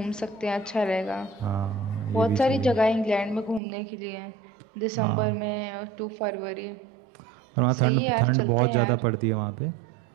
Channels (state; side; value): drops out; left; at 3.6 s